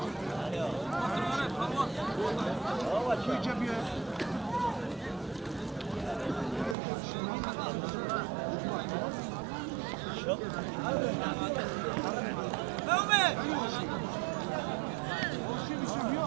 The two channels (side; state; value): left; drops out; at 6.8 s